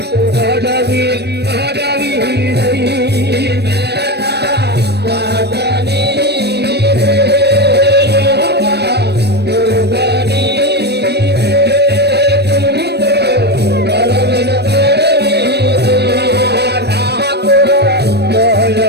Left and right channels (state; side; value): late; left; 0.48 ms